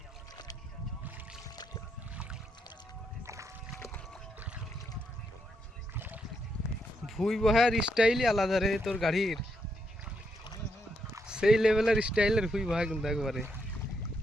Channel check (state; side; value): normal; both; correlation 0.79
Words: ভুই বহার স্টাইলই আলাদা রে তোর গাড়ির, সেই লেভেলের স্টাইলের ভুই বহা কিন্তু একবারে।